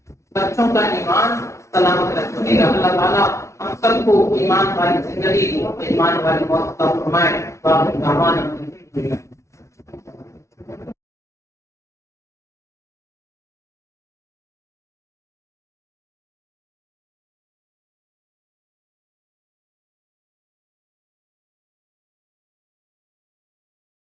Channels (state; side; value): late; right; 0.14 ms